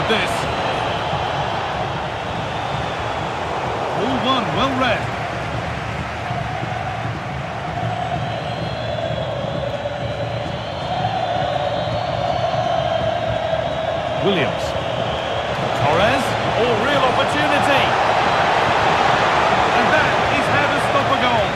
this. All one, well read. Williams. Torres. Oh, real opportunity. And that is how to stop a goal.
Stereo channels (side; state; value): both; identical; correlation 1.00